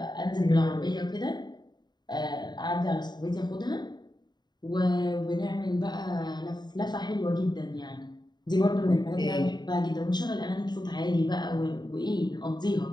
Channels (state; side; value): late; right; 0.21 ms